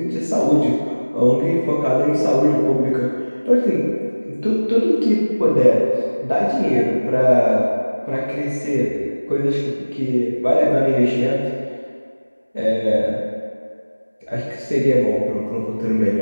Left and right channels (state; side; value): inverted; both; correlation -1.00